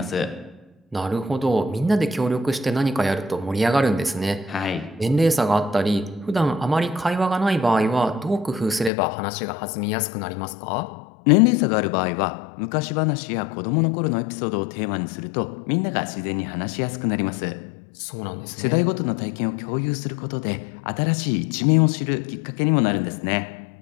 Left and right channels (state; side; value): drops out; right; at 8.9 s